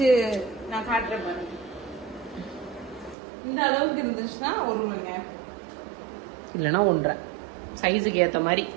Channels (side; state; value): left; drops out; at 3.2 s